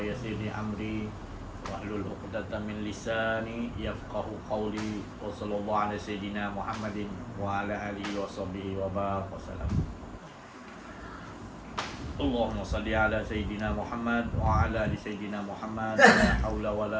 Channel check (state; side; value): identical; both; correlation 1.00